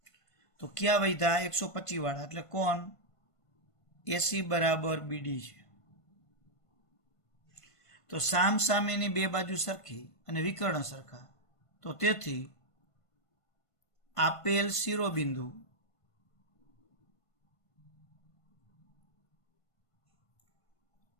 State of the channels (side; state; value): right; late; 1.5 ms